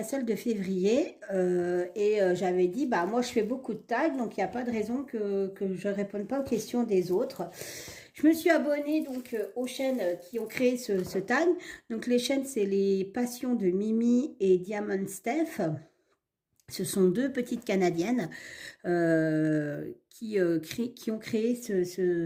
celle de février j'avais dit, bah moi je fais beaucoup de tags, donc il n'y a pas de raison que je ne réponde pas aux questions des autres. Je me suis abonnée donc aux chaînes qui ont créé ce tag. Donc les chaînes, c'est les Passions de Mimi et Diamond Steph. Ce sont deux petites Canadiennes qui ont créé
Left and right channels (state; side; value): identical; both; correlation 1.00